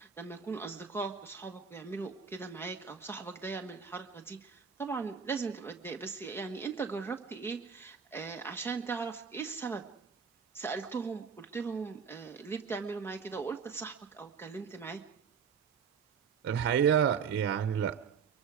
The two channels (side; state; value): left; quieter; 6.5 dB